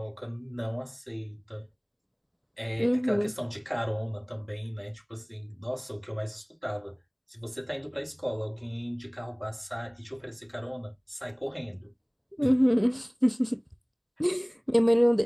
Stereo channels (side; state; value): both; identical; correlation 1.00